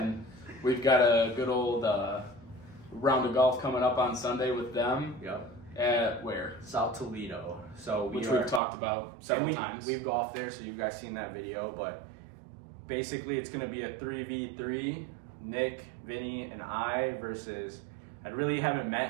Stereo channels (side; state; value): left; drops out; at 8.6 s